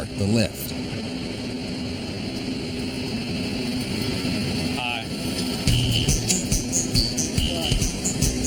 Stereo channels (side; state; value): both; identical; correlation 1.00